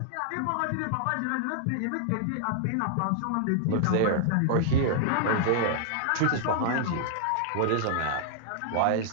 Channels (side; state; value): both; different; correlation -0.01